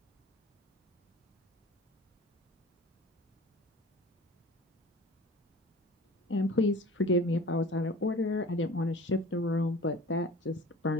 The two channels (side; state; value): both; normal; correlation 0.41